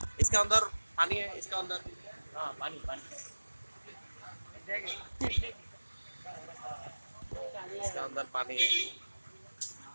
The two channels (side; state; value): both; inverted; correlation -1.00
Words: इसका अंदर पानी है, इसका अंदर हाँ पानी पानी इसका अंदर पानी है।